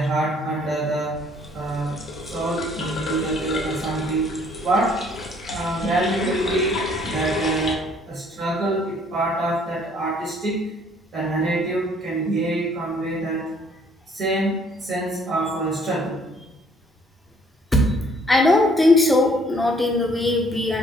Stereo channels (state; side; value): normal; both; correlation 0.61